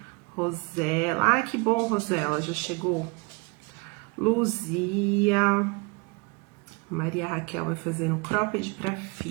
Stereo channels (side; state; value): left; quieter; 29.0 dB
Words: Rosela, que bom, Rosela, já chegou. Luzia, Maria Raquel vai fazer um cropped para